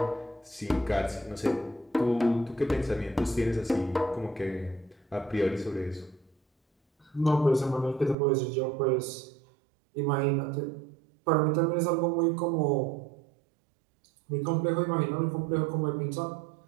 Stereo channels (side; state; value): left; drops out; at 8.2 s